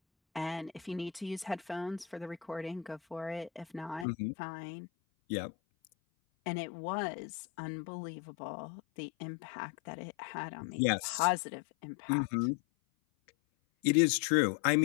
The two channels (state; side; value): drops out; right; at 4.0 s